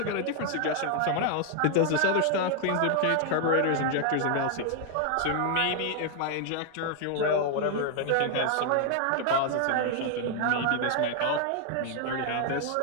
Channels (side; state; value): both; different; correlation 0.00